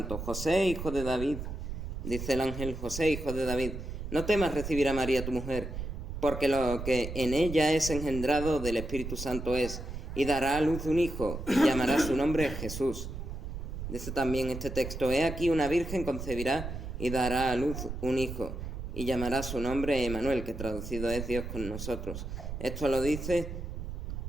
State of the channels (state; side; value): noise; right; rumble, 7 dB below the sound